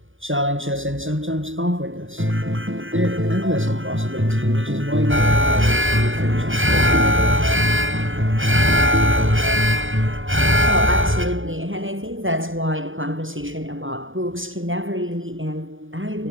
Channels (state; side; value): late; left; 0.58 ms